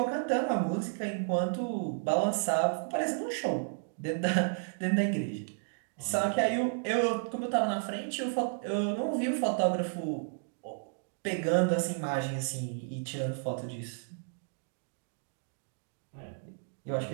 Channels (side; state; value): left; silent; digital silence